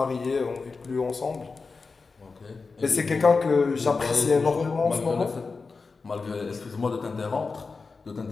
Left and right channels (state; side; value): quieter; right; 4.4 dB